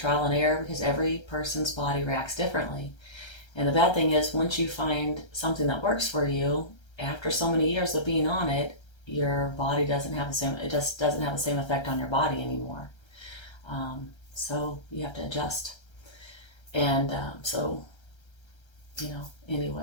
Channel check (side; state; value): right; late; 1.3 ms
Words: and error because every person's body reacts differently. And the bad thing is, once you find something that works for you, after so many years of being on it, your body doesn't have the same effect on your body anymore. So you have to adjust. And